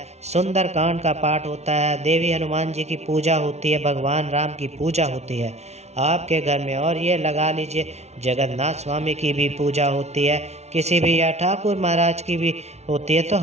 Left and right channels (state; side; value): late; left; 0.31 ms